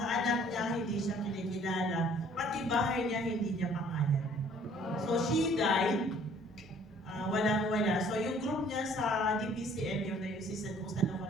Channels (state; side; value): normal; both; correlation 0.57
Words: anak niya hindi siya kinikilala, pati bahay niya hindi niya pangalan. So she died, walang-wala. So yung group niya sa DPCM, yung diocese kung saan ako